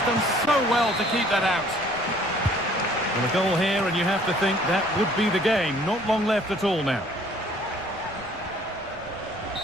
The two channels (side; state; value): left; noise; rumble, 22 dB below the sound